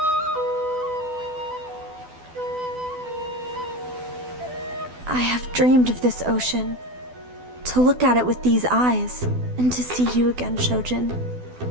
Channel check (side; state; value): left; late; 12 ms